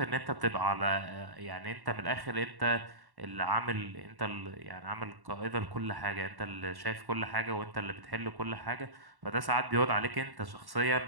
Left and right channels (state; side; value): late; left; 1.1 ms